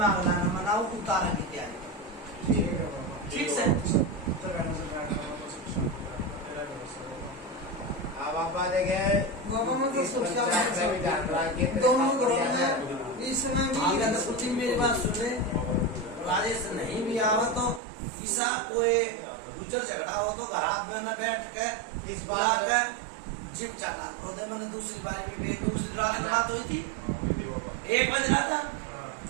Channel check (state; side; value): drops out; left; at 17.8 s